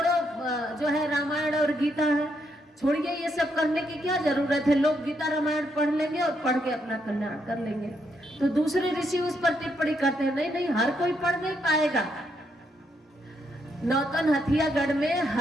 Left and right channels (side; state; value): both; normal; correlation 0.77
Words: जो है रामायण और गीता है, छोड़िए ये सब करने की क्या जरूरत है, लोग गीता रामायण पढ़ लेंगे और पढ़ के अपना कल्याण कर लेंगे। तो दूसरे ऋषि उस पर टिप्पणी करते हैं नहीं नहीं, हर कोई पढ़ नहीं पाएगा। नौतन हथियागढ़ में